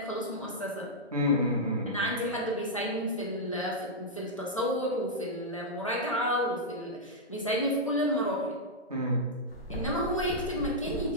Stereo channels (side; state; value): both; normal; correlation -0.06